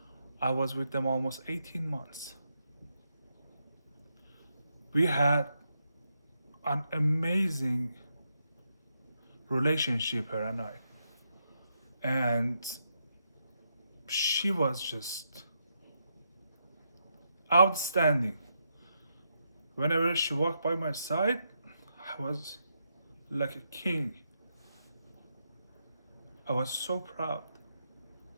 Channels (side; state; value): both; inverted; correlation -0.81